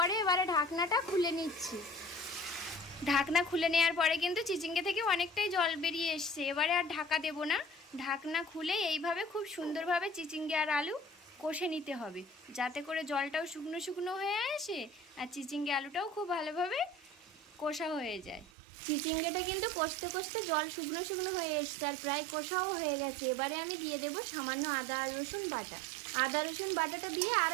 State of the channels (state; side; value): drops out; left; at 18.5 s